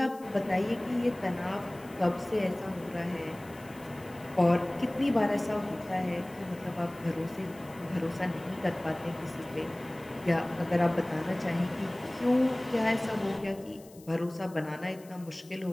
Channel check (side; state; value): left; noise; hiss, 24 dB below the sound